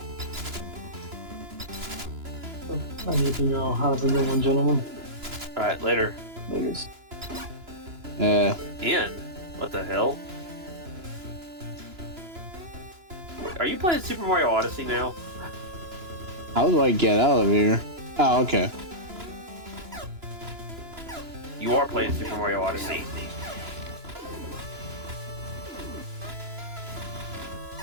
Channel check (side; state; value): left; late; 2.9 ms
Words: I need to know how to know one, gentlemen. Alright, later. Please. Ian? What the hell? Wait, are you playing Super Mario Odyssey now? How do I get out of here? Oh, okay. You are playing Super Mario Odyssey.